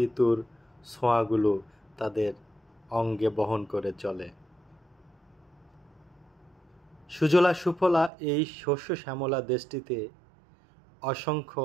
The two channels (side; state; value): left; drops out; at 8.1 s